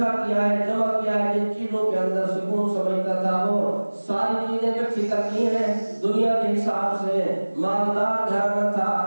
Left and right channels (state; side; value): inverted; both; correlation -1.00